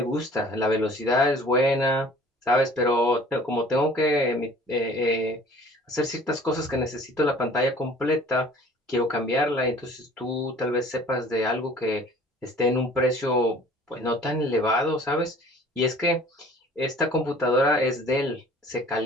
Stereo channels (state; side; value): normal; both; correlation 0.50